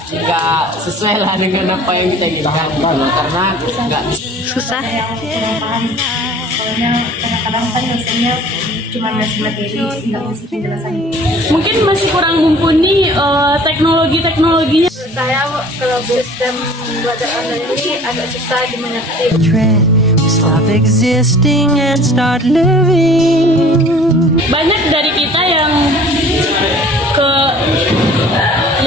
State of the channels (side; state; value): both; normal; correlation 0.48